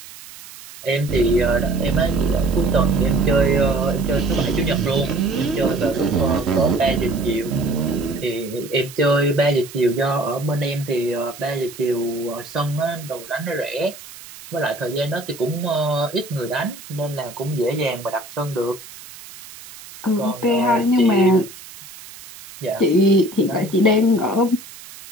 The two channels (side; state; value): right; noise; hiss, 17 dB below the sound